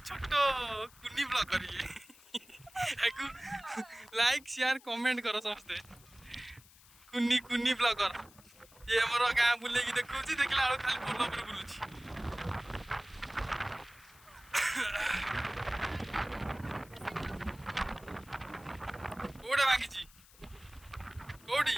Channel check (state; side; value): noise; left; hiss, 24 dB below the sound